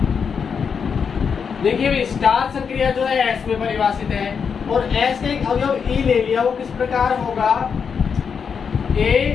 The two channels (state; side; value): quieter; right; 6.4 dB